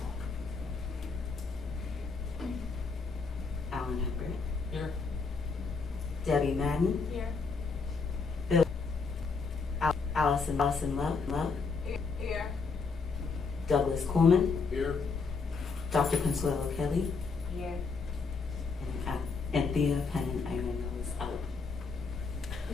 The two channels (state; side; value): quieter; right; 4.7 dB